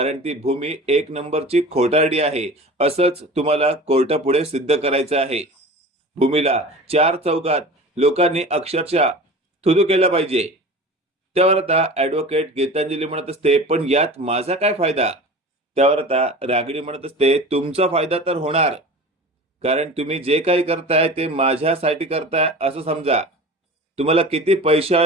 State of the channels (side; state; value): both; normal; correlation 0.37